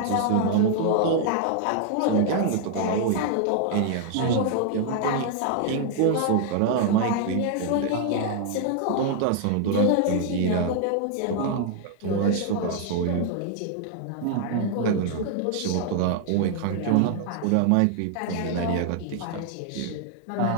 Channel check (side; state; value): both; different; correlation 0.00